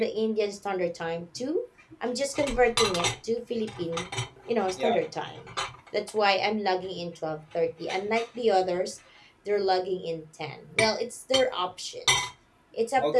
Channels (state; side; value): identical; both; correlation 1.00